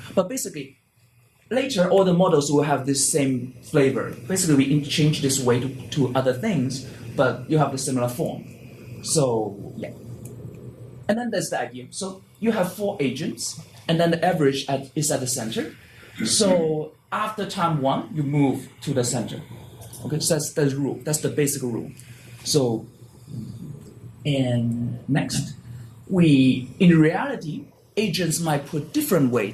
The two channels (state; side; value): identical; both; correlation 1.00